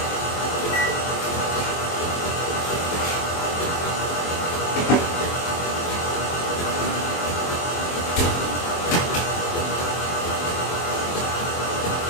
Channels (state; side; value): late; right; 23 ms